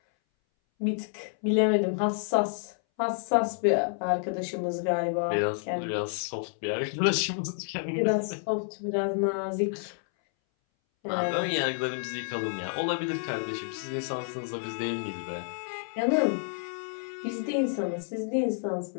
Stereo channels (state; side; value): silent; right; 58 dB below the other